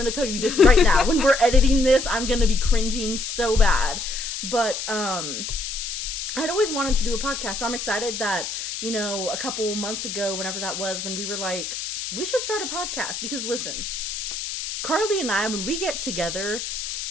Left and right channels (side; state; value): left; noise; hiss, 5 dB below the sound